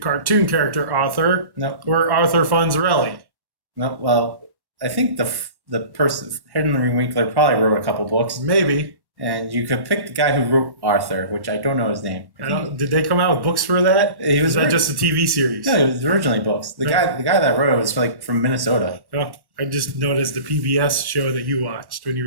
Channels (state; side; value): late; left; 1.1 ms